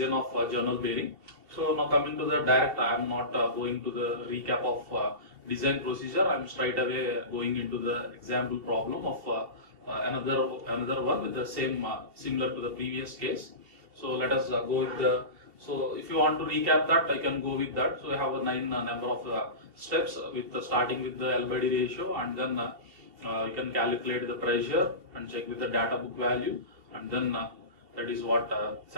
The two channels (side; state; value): left; late; 2.8 ms